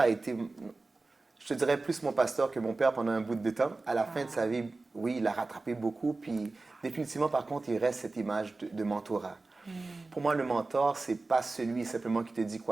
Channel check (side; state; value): left; quieter; 3.4 dB